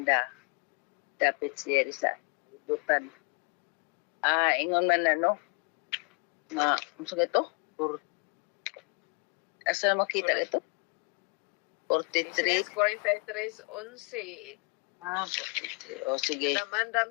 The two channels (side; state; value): right; quieter; 33.6 dB